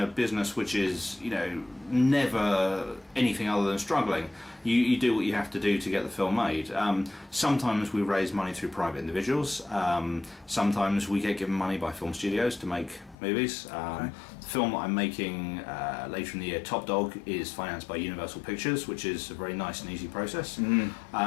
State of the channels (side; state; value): right; drops out; at 13.2 s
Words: business which is, never anything other than struggling, you do what you have to do to get the film made. Sometimes we raise money through private individuals. Sometimes we get given money by film studios to make movies. The film that I'm making later in the year, Top Dog, is financed by Universal Pictures, which is a very nice and easy process.